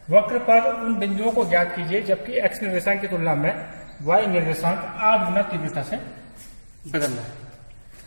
वक्र पर उन बिंदुओं को ज्ञात कीजिए जबकि x निर्देशांक की तुलना में y निर्देशांक 8 गुना तीव्रता से बदलना है।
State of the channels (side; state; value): both; inverted; correlation -1.00